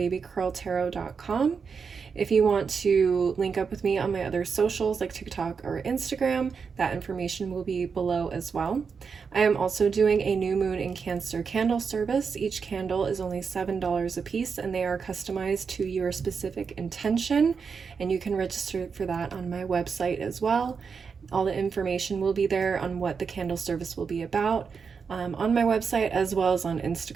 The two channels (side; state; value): left; quieter; 5.7 dB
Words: If you want to link up with me on my other socials like TikTok or Instagram, that information will be below as well. I am also doing a new moon in Cancer candle service. Each candle is only $7 a piece, and they are customized to your specific intention, and you can register for that on my website as well. All the information will be there on what the candle service will be about on my website as well as on